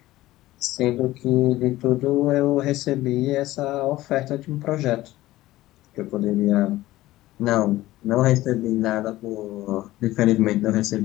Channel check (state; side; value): quieter; right; 16.6 dB